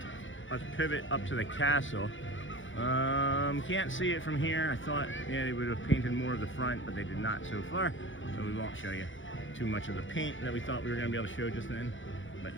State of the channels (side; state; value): right; late; 0.56 ms